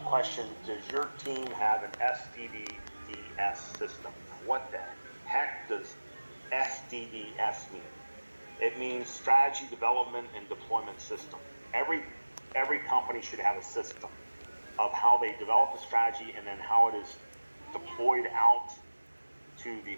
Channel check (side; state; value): both; inverted; correlation -1.00